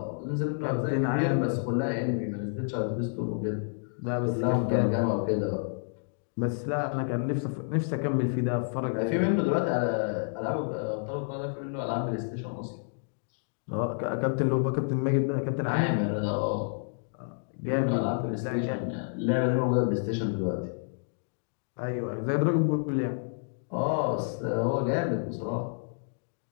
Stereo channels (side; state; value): right; silent; digital silence